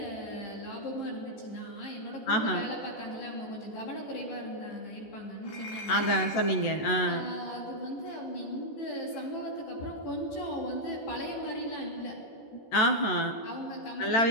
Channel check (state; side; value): late; right; 14 ms